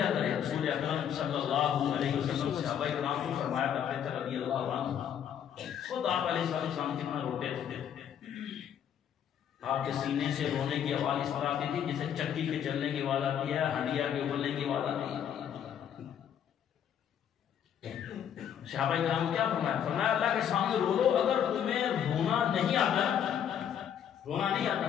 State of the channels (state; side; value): quieter; right; 9.1 dB